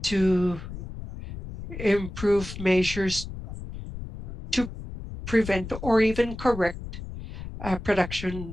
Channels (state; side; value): noise; left; rumble, 10 dB below the sound